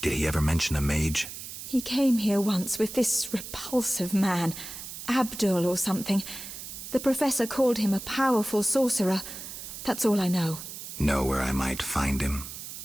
Did he ever mention a mage? He came here once with this repulsive man, Abdul or something. The professor called him a powerful sorcerer. That's all I know. Know where I might find him?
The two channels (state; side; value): noise; right; hiss, 10 dB below the sound